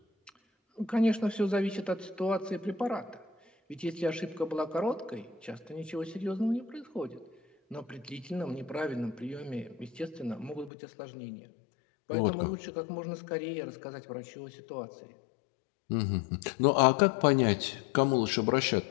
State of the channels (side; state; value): right; drops out; at 10.7 s